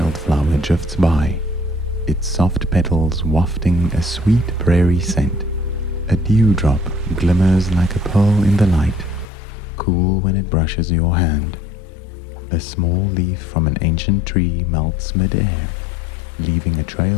drifts by, its soft petals wafting a sweet prairie scent. A dewdrop glimmers like a pearl in the light, cool when it brushes your hand. A small leaf from an ancient tree melts mid-air, leaving a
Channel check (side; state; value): right; drops out; at 9.2 s